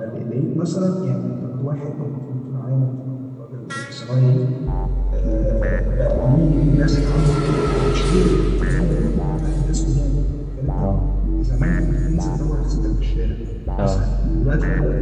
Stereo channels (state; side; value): identical; both; correlation 1.00